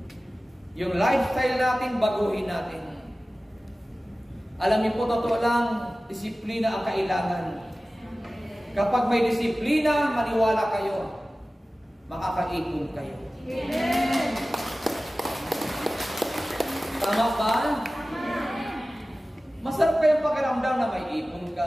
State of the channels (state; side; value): normal; both; correlation 0.96